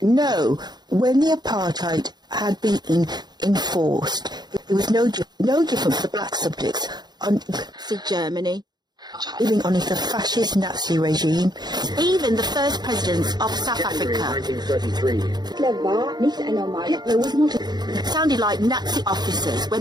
So, when the apartheid had been enforced, it was no different for the black subjects on Nazi Germany, living under the fascist Nazi regime. Even the first presidents of South Africa 1933. Hitler was not sounded like Nazi officers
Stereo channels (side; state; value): left; late; 0.20 ms